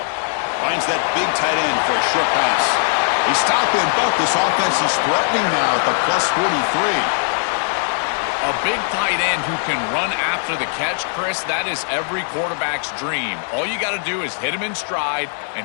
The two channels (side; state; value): right; silent; digital silence